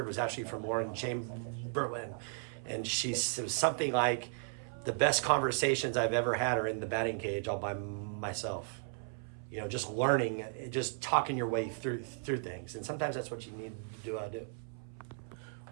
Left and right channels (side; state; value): left; silent; 54 dB below the other